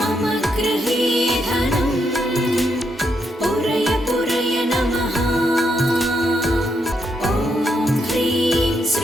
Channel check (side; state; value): both; normal; correlation 0.79